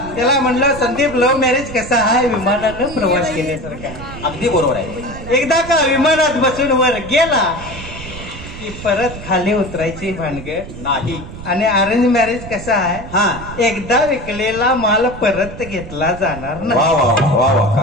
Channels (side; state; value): right; noise; rumble, 12 dB below the sound